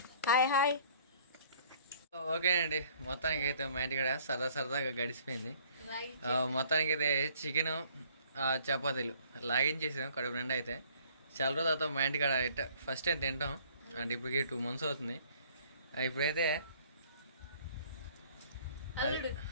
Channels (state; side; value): inverted; both; correlation -0.57